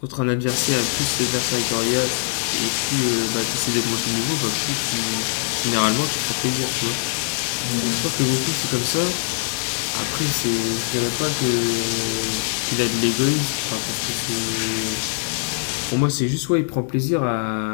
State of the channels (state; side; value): silent; right; digital silence